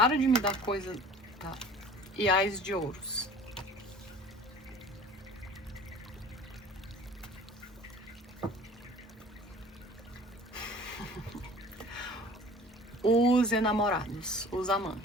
de me dar coisa... Tá. E ás de ouros. Os enamorados, os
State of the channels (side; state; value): both; normal; correlation 0.46